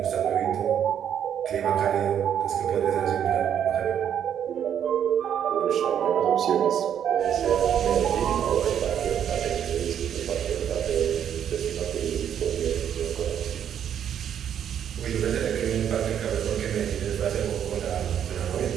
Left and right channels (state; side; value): quieter; left; 9.2 dB